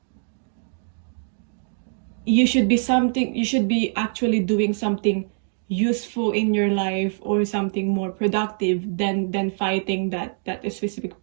you should be actually doing something useful in your life, or something more productive than fighting that specific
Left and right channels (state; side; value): silent; left; digital silence